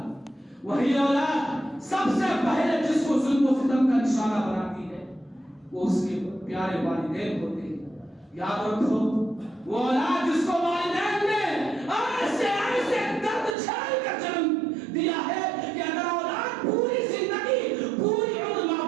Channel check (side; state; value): left; drops out; at 13.6 s